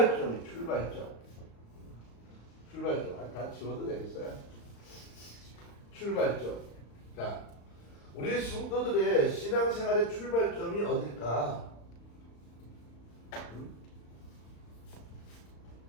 다 지워도 되겠어요? 출발점. 자, 우리 성도들의 신앙생활의 출발점이 어딜까?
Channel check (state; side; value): late; right; 35 ms